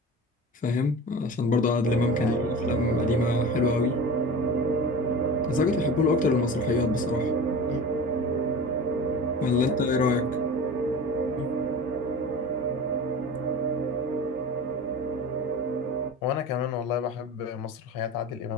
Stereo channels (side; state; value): both; normal; correlation 0.34